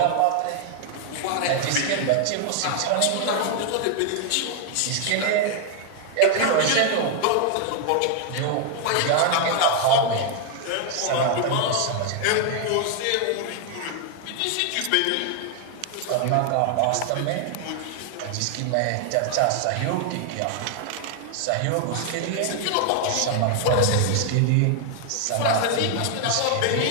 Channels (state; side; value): different; both; correlation 0.00